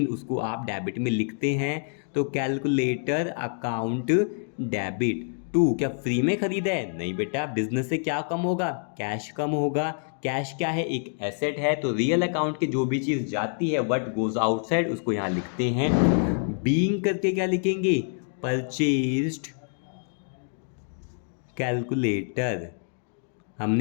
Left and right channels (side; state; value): right; silent; 60 dB below the other